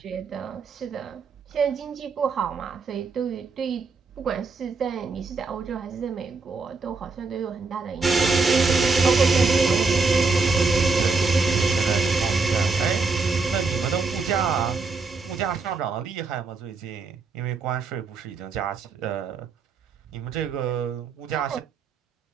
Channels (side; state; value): left; quieter; 4.3 dB